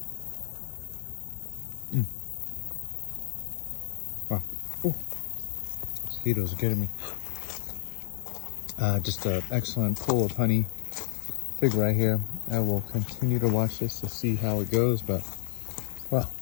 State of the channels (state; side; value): silent; right; digital silence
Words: Wow. Ooh. Mosquitoes are getting me. Just an excellent pool of honey. Fig right here. I will continue to watch this to see how it goes, but wow,